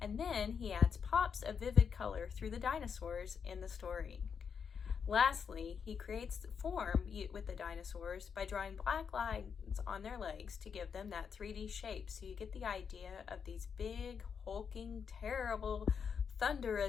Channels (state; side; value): quieter; right; 6.6 dB